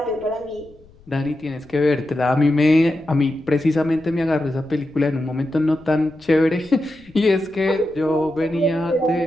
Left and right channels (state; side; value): noise; left; rumble, 27 dB below the sound